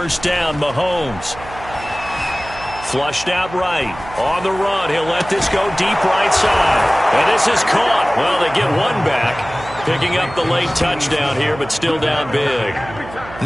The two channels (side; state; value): right; noise; hum, 15 dB below the sound